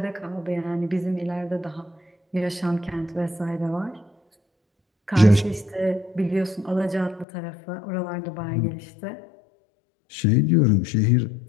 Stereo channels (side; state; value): right; drops out; at 7.2 s